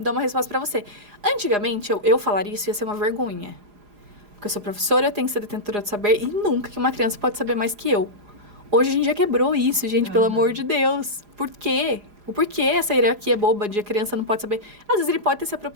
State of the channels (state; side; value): late; left; 4.8 ms